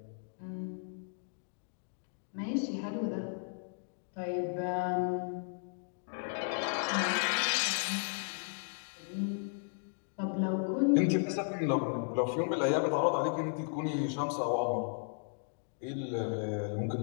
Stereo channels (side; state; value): right; silent; digital silence